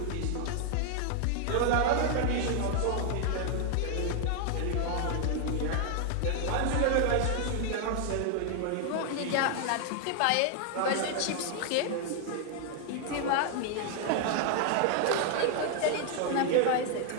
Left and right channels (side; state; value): both; different; correlation 0.00